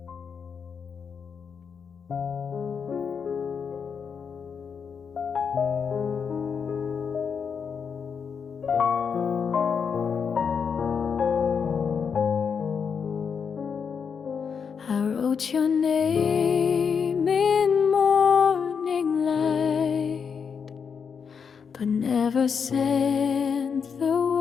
I wrote your name in morning light, but never sent the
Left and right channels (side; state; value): right; quieter; 6.4 dB